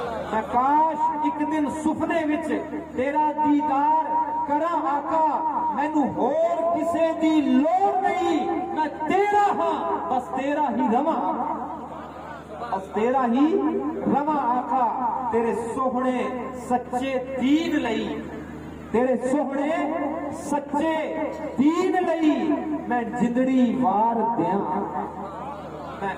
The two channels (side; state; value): both; identical; correlation 1.00